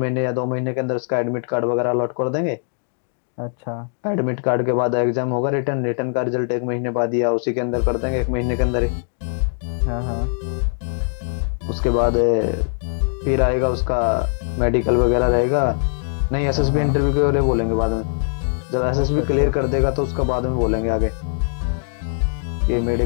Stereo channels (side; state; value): right; silent; digital silence